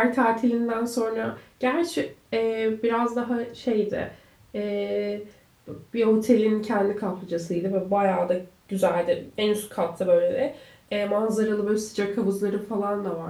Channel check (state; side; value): identical; both; correlation 1.00